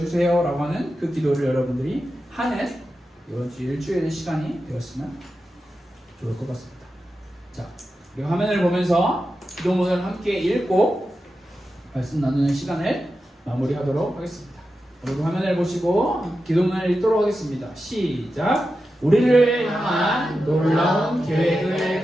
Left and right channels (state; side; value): normal; both; correlation 0.91